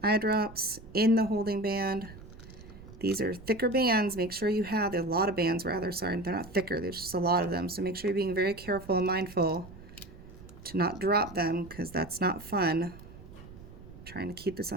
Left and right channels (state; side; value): noise; right; rumble, 17 dB below the sound